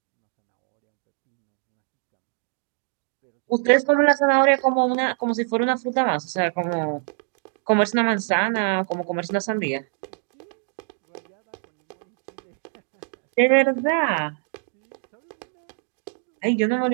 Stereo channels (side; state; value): left; silent; 56 dB below the other